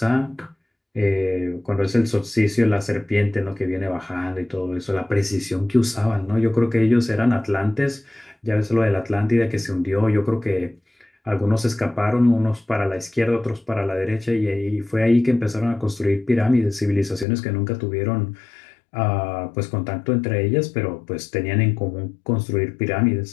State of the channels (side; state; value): right; drops out; at 17.2 s